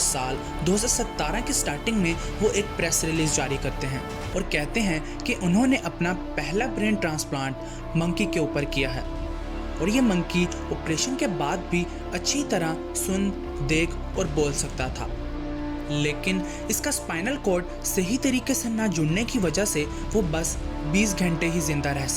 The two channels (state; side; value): identical; both; correlation 1.00